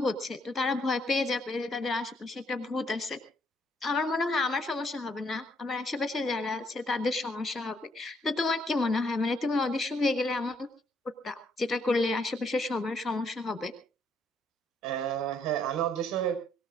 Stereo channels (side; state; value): both; normal; correlation 0.70